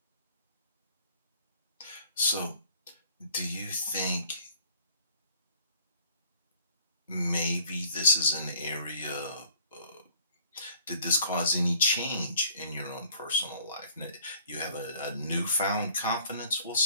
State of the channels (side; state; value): both; inverted; correlation -0.55